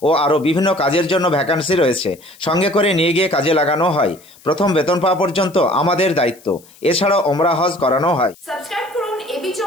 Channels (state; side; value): noise; left; hiss, 26 dB below the sound